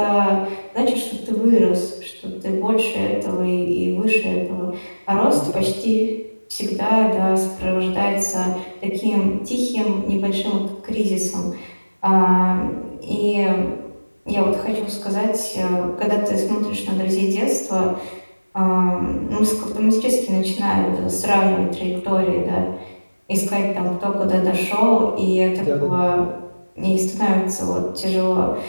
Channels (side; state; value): both; inverted; correlation -1.00